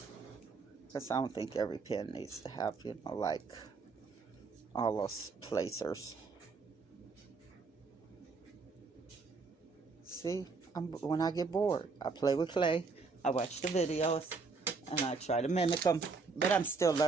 Because I don't think every pen needs to have, you know, like all those placers. See, when I get bored, I play with clay. I watch the videos and I try to mimic them, but I'm still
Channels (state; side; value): quieter; left; 4.5 dB